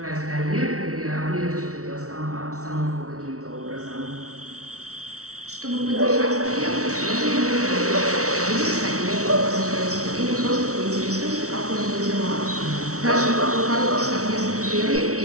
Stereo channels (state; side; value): late; left; 0.64 ms